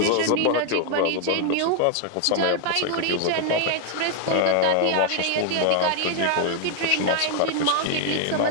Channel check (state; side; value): different; both; correlation 0.00